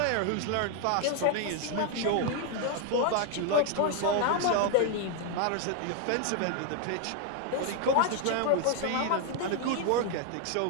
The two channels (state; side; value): different; both; correlation 0.00